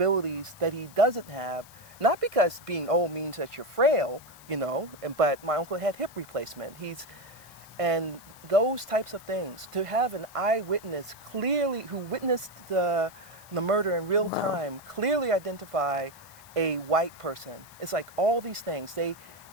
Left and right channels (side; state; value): left; noise; hiss, 22 dB below the sound